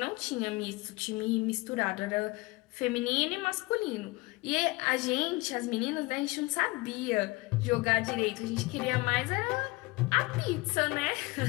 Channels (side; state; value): right; quieter; 23.4 dB